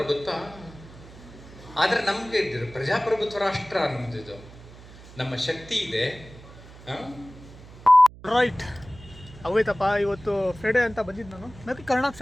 ಗೊತ್ತಾ. ಆದರೆ ನಮಗೆ ಪ್ರಜಾಪ್ರಭುತ್ವ ರಾಷ್ಟ್ರ ಅನ್ನೋದಿದು ನಮ್ಮ ಶಕ್ತಿ ಇದೆ. ರೈಟ್ ಅವೈತಪ್ಪ, ಇವತ್ತು ಫ್ರೈಡೇ ಅಂತ ಬಂದಿದ್ದು ನಾನು. मैं करना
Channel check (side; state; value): right; noise; hum, 19 dB below the sound